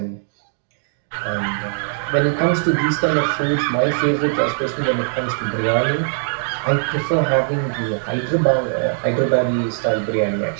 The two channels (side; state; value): left; silent; digital silence